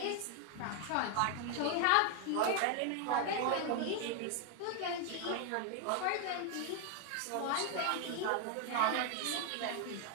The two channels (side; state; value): both; different; correlation 0.00